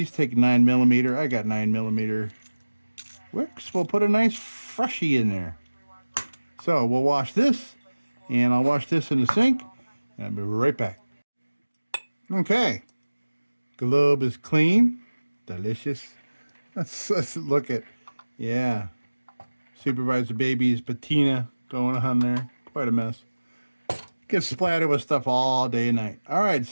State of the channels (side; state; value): both; inverted; correlation -1.00